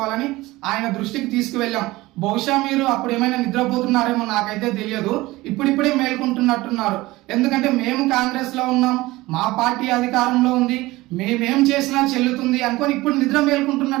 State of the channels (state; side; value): quieter; left; 19.4 dB